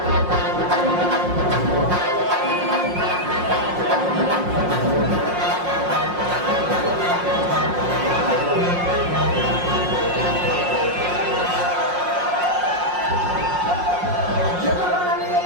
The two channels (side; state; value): left; late; 5.6 ms